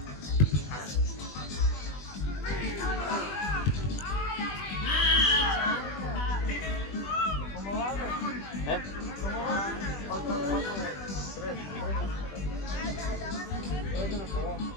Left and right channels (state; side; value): late; right; 20 ms